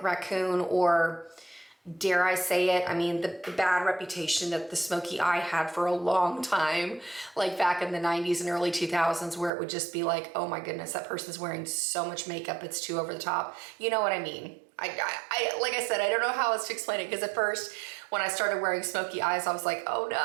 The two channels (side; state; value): left; drops out; at 9.5 s